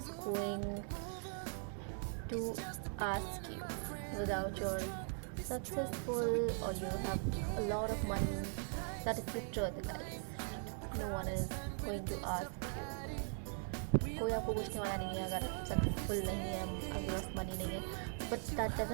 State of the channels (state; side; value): silent; left; 51 dB below the other